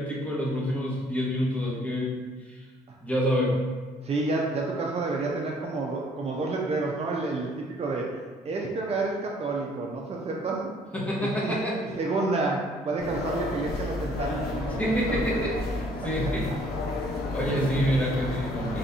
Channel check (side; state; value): both; normal; correlation 0.61